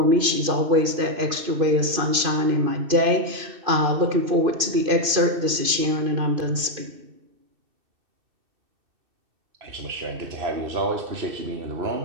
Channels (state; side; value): late; left; 2.5 ms